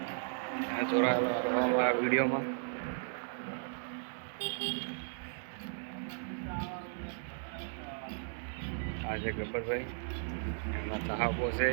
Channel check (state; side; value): silent; left; 54 dB below the other